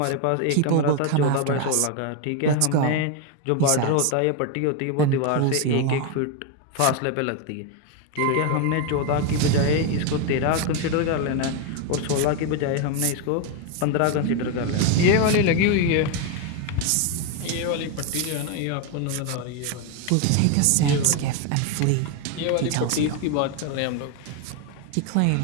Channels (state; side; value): different; both; correlation 0.02